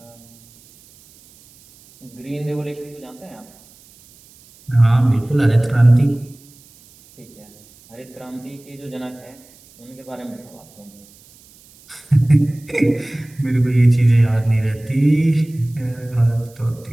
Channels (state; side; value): noise; right; hiss, 26 dB below the sound